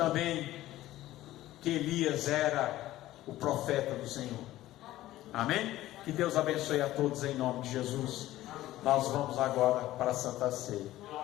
que Elias era o profeta do Senhor. Amém? Que Deus abençoe a todos em nome de Jesus. Nós vamos agora para a Santa Ceia.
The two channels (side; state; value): right; quieter; 15.3 dB